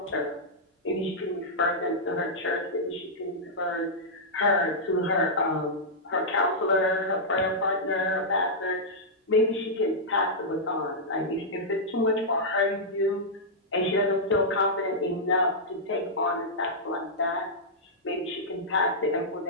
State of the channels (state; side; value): normal; both; correlation -0.10